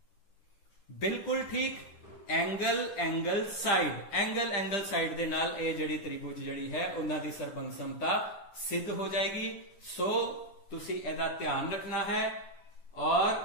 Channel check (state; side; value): late; right; 10 ms